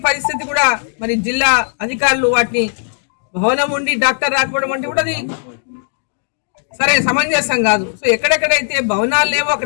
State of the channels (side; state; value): right; silent; digital silence